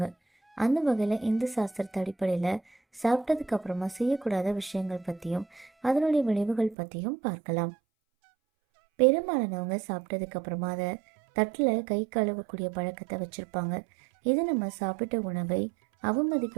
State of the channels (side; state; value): left; drops out; at 6.8 s